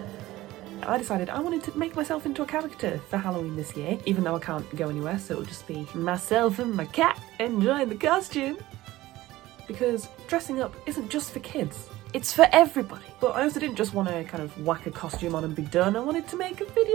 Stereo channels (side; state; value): left; quieter; 16.9 dB